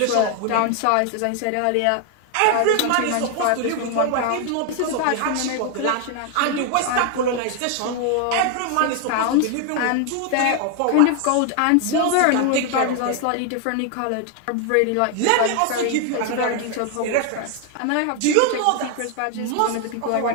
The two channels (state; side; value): different; both; correlation 0.01